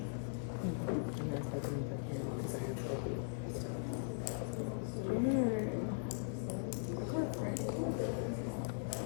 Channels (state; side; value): silent; right; digital silence